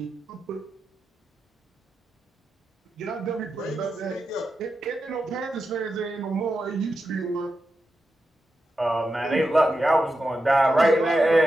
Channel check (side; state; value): both; normal; correlation 0.89